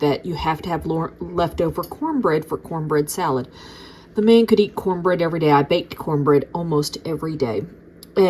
that you have to have leftover cornbread for cornbread salad. The man could eat cornbread every day. I baked cornbread almost every day,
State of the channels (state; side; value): identical; both; correlation 1.00